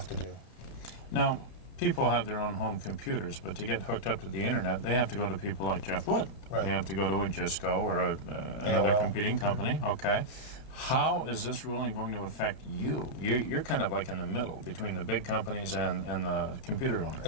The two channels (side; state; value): right; late; 30 ms